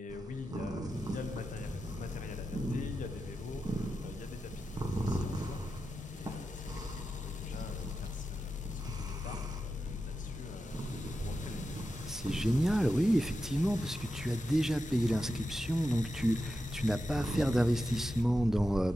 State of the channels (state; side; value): normal; both; correlation 0.90